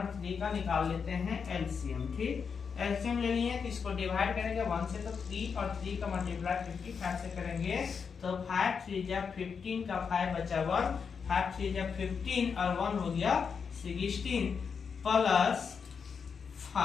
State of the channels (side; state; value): right; quieter; 6.1 dB